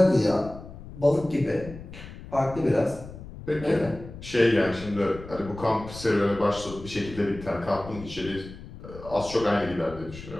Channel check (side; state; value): left; noise; rumble, 14 dB below the sound